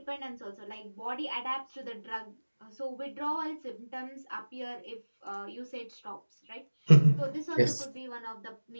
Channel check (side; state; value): both; inverted; correlation -1.00